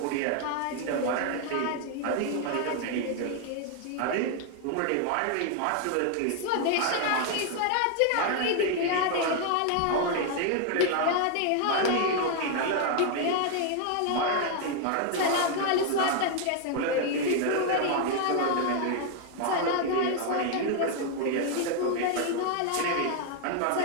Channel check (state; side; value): different; both; correlation 0.00